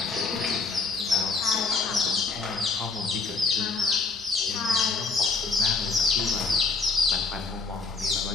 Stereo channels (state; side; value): quieter; right; 4.2 dB